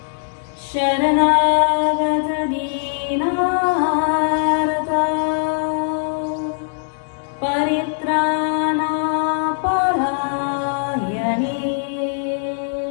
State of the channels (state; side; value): silent; right; digital silence